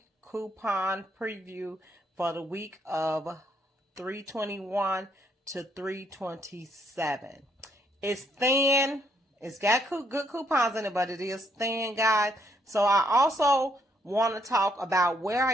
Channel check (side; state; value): both; normal; correlation 0.72